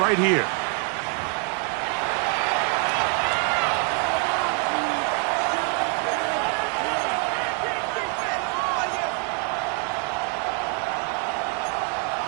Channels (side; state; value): left; quieter; 39.4 dB